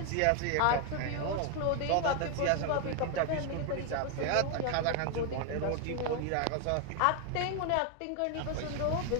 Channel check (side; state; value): both; different; correlation 0.01